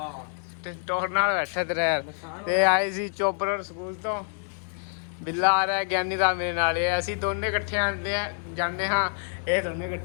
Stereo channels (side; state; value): right; silent; 60 dB below the other